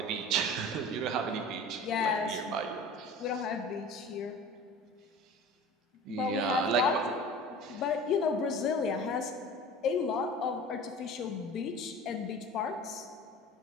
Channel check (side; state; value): both; normal; correlation 0.39